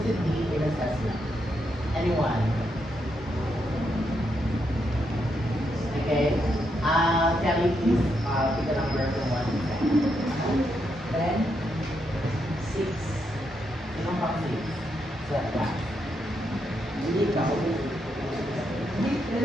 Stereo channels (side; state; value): both; normal; correlation 0.80